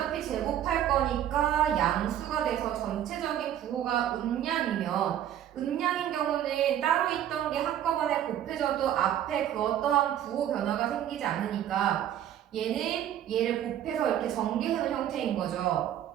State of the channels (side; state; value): left; quieter; 11.0 dB